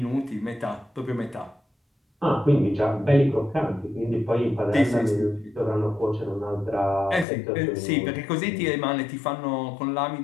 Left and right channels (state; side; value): drops out; right; at 7.2 s